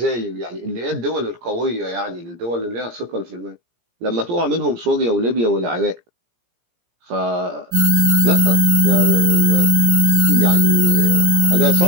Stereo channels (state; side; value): late; left; 17 ms